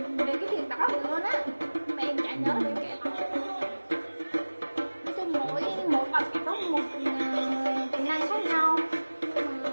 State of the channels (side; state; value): both; inverted; correlation -1.00